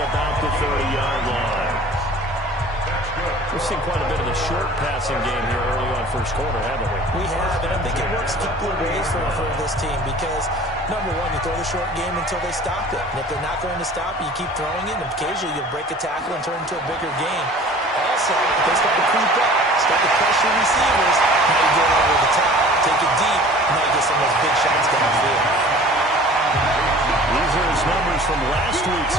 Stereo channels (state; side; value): normal; both; correlation 0.46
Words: about the 30-yard line. We've seen quite a bit of the short passing game here early on first quarter, haven't we? We have, and I think it works a couple of ways for this team because, number one, you throw the short game until they stop it. And if they're not going to stop it, you keep throwing it, and occasionally you'll break a tackle and turn it into a bigger game. Also, if they start to creep up, start to pressure receivers, now you get over the top, take it deep, and now you get some of those big shots downfield. These are his numbers from last week's